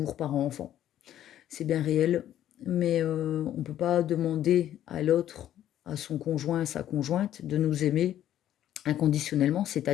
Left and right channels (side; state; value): right; quieter; 11.7 dB